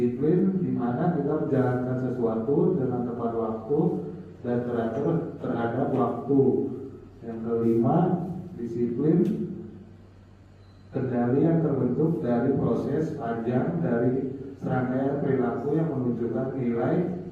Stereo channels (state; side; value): identical; both; correlation 1.00